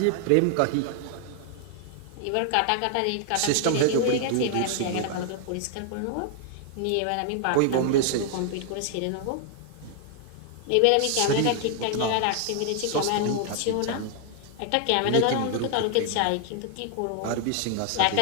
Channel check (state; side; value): different; both; correlation 0.00